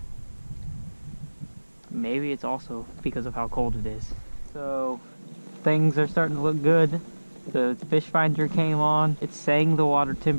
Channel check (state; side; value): inverted; both; correlation -1.00